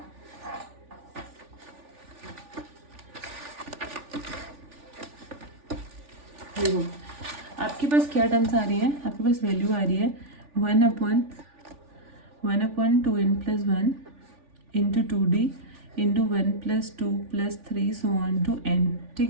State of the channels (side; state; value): left; late; 3.4 ms